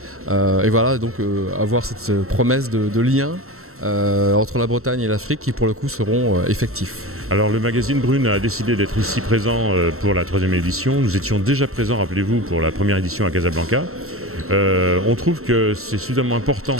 Et voilà, donc avoir cette promesse de lien entre la Bretagne et l'Afrique qui pour le coup seront effectifs. Alors le magazine Brune a décidé d'être ici présent pour la troisième édition. Nous étions déjà présents, rappelez-vous, pour la première édition à Casablanca. On trouve que c'est suffisamment important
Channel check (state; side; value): late; left; 0.63 ms